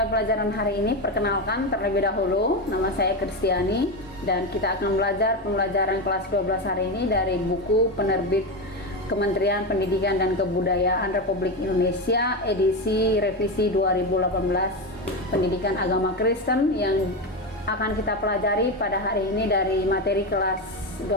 pelajaran hari ini, perkenalkan terlebih dahulu, nama saya Kristiani dan kita akan belajar pembelajaran kelas 12 hari ini dari buku penerbit Kementerian Pendidikan dan Kebudayaan Republik Indonesia edisi revisi 2018 Pendidikan Agama Kristen yang akan kita pelajari pada hari ini dari materi kelas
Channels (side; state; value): both; normal; correlation 0.15